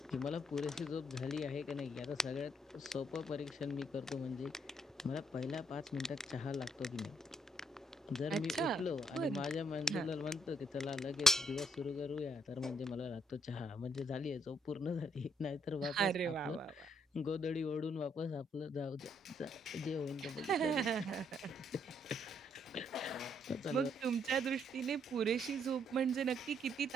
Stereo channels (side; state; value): both; normal; correlation 0.70